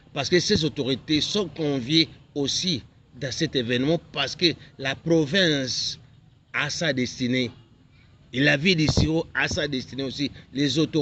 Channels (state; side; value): identical; both; correlation 1.00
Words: parce que ces autorités sont conviées aussi dans cet événement, parce que la province a sa destinée. Et la ville d'Isiro a sa destinée aussi. Les